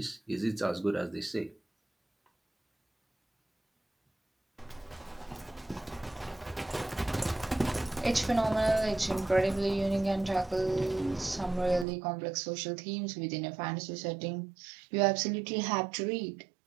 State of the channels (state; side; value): drops out; left; at 11.9 s